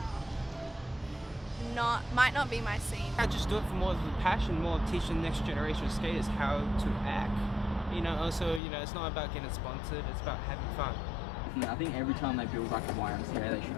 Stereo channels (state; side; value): drops out; right; at 8.6 s